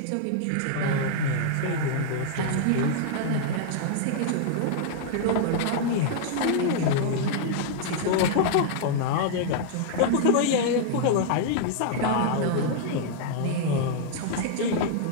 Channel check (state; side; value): different; both; correlation -0.01